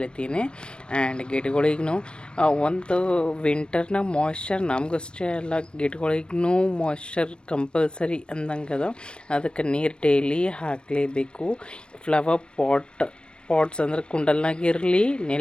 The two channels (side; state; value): right; late; 0.055 ms